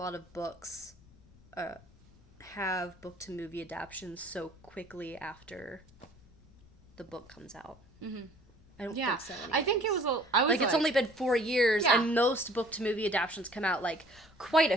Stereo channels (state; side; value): noise; left; rumble, 26 dB below the sound